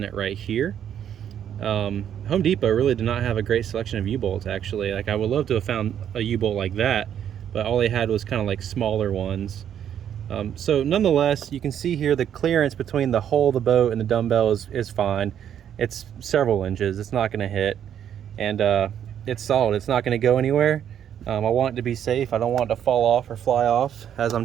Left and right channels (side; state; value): left; quieter; 9.5 dB